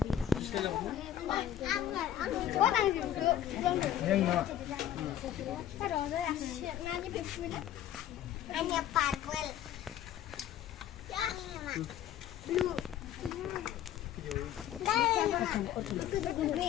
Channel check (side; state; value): right; quieter; 11.2 dB